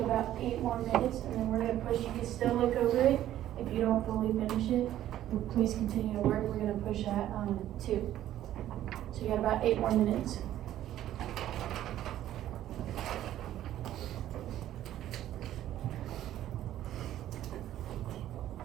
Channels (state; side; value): quieter; left; 12.6 dB